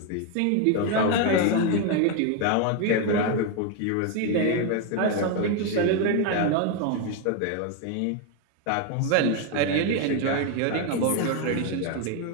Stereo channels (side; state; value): both; different; correlation 0.01